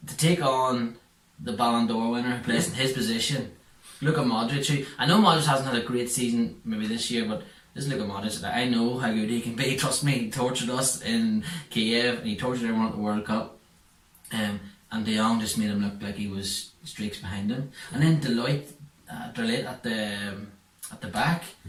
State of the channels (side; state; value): both; identical; correlation 1.00